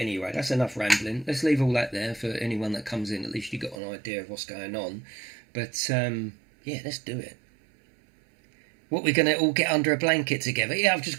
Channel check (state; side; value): drops out; left; at 3.8 s